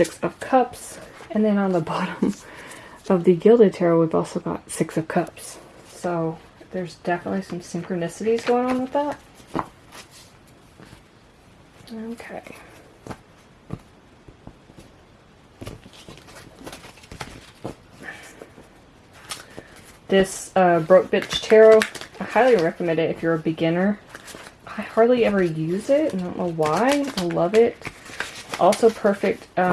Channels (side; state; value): both; identical; correlation 1.00